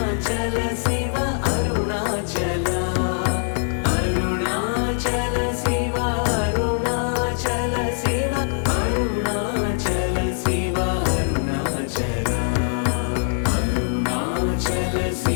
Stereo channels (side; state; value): right; silent; 57 dB below the other